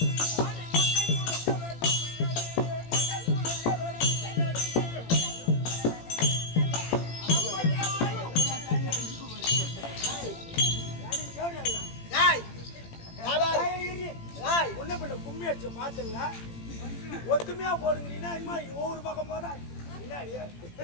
உன்ன பிள்ளை கும்மி அடிச்சு பாத்துல ஒத்துமையா போடுங்கிறீங்கன்னா இனிமே ஒவ்வொரு பக்கம் போதா முன்னாடி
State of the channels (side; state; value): right; late; 18 ms